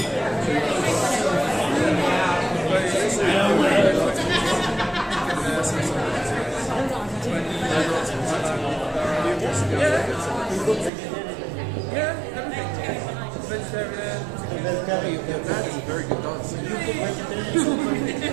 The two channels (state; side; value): drops out; left; at 10.9 s